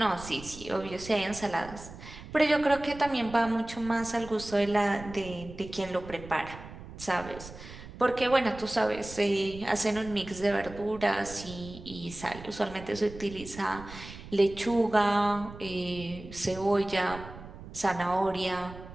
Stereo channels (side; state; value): right; noise; rumble, 14 dB below the sound